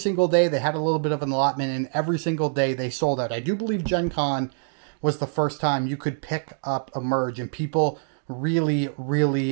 day they had a little bit of an allotment, and every single day they sold out. I do believe GenCon was the first time you could pick up Emerge, and people really,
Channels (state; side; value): silent; left; digital silence